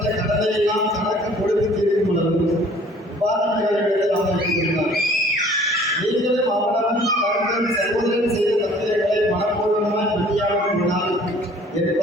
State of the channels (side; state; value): both; normal; correlation 0.53